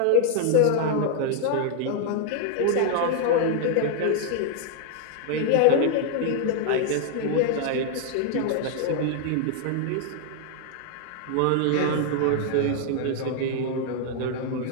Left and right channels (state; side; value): different; both; correlation 0.00